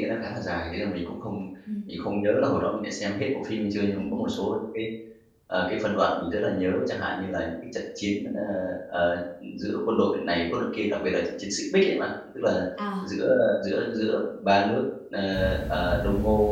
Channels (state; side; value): identical; both; correlation 1.00